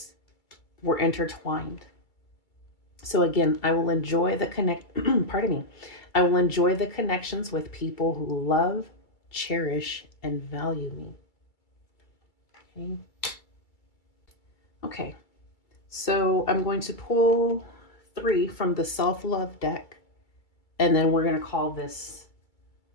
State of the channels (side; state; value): right; late; 2.3 ms